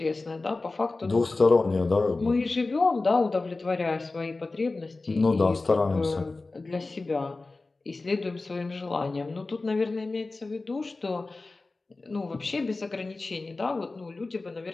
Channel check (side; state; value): right; quieter; 3.4 dB